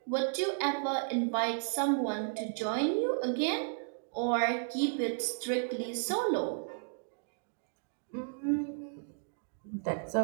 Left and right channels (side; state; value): left; silent; digital silence